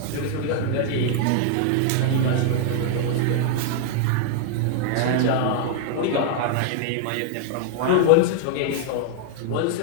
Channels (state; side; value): different; both; correlation 0.00